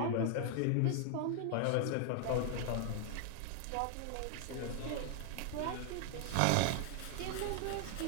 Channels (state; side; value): different; both; correlation 0.00